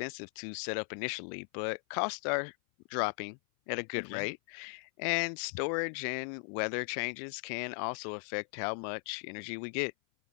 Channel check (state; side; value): silent; right; 53 dB below the other